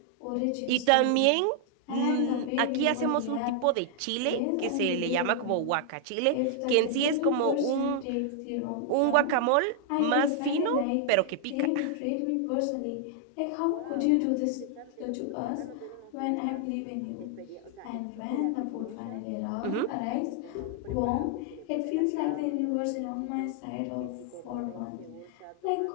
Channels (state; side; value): different; both; correlation 0.00